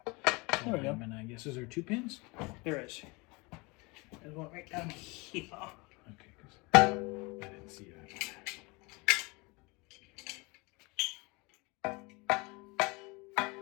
there we go. And I guess, is there 2 pins? There is. There's one right down here. Okay, because I didn't see that.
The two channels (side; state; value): right; quieter; 26.5 dB